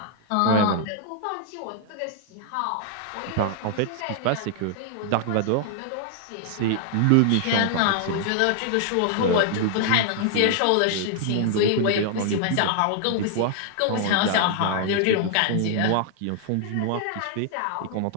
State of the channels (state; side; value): different; both; correlation 0.00